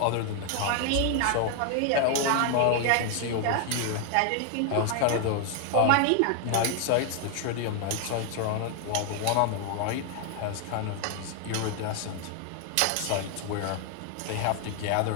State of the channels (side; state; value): both; different; correlation 0.00